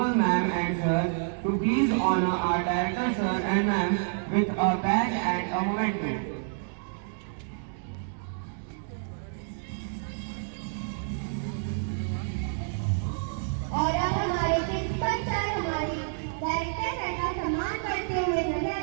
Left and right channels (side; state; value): left; silent; digital silence